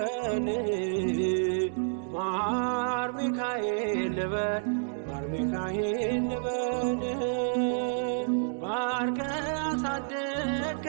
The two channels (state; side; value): silent; left; 58 dB below the other